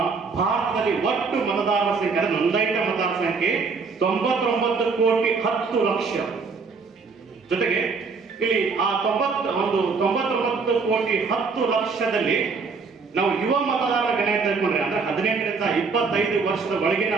ಭಾರತದಲ್ಲಿ ಒಟ್ಟು ಮತದಾರರ ಸಂಖ್ಯೆ, ನೋಂದಾಯಿತ ಮತದಾರರ ಸಂಖ್ಯೆ 99 ಕೋಟಿ 10 ಲಕ್ಷ. ಜೊತೆಗೆ ಇಲ್ಲಿ ಆ 99 ಕೋಟಿ 10 ಲಕ್ಷದಲ್ಲಿ ನಾವು ಯುವ ಮತದಾರರ ಗಣನೆ ತೆಗೆದುಕೊಂಡ್ರೆ ಅಂದ್ರೆ 18ರಿಂದ 25 ವರ್ಷದ ಒಳಗಿನ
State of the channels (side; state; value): left; quieter; 4.7 dB